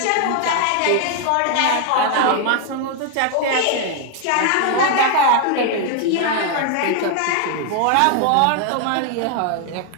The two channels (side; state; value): both; different; correlation 0.00